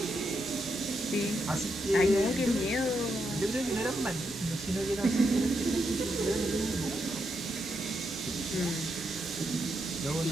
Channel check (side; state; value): both; normal; correlation 0.82